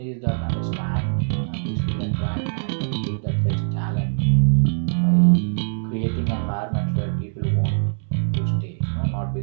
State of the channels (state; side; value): silent; left; digital silence